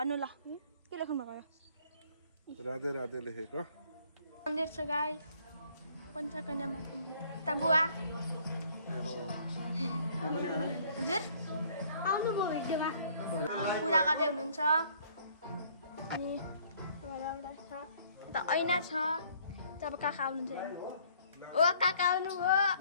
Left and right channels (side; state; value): both; inverted; correlation -0.60